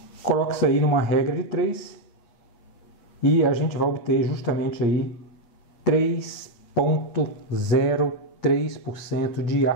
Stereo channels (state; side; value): late; right; 8.5 ms